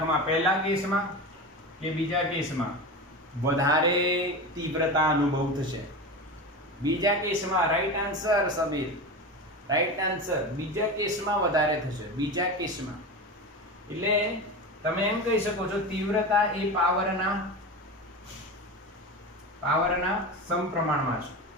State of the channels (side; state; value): both; normal; correlation 0.25